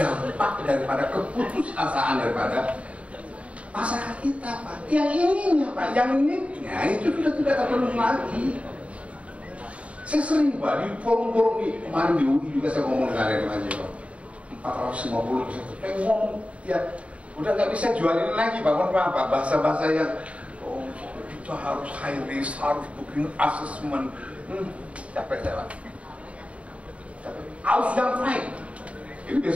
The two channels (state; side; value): late; left; 0.064 ms